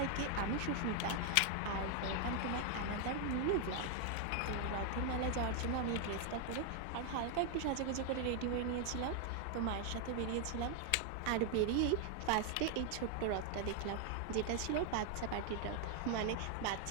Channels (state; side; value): different; both; correlation 0.00